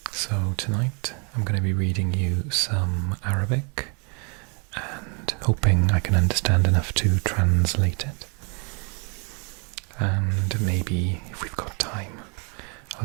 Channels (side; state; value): left; quieter; 35.4 dB